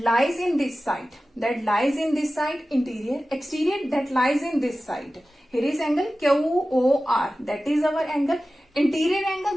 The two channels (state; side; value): normal; both; correlation 0.95